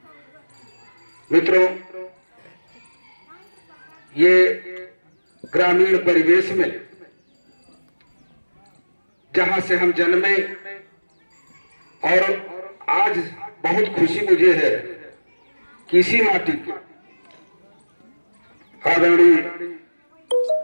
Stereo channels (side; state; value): both; inverted; correlation -1.00